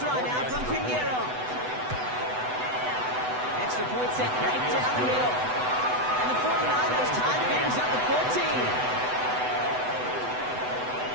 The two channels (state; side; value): late; left; 8.0 ms